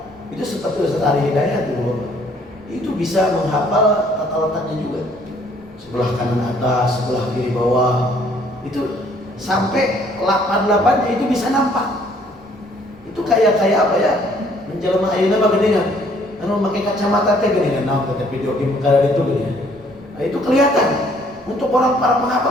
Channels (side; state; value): right; noise; rumble, 28 dB below the sound